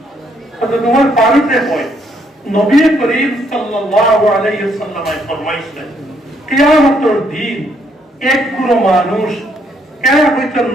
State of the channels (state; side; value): normal; both; correlation 0.71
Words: তো তোমার পারিতে হয় নবী করিম সাল্লাল্লাহু আলাইহি ওয়াসাল্লাম ফরমাইছেন কিয়ামতের দিন এক কোনো মানুষ এরা হয়তো